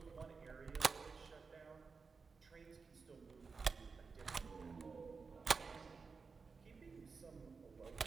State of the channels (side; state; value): left; quieter; 4.9 dB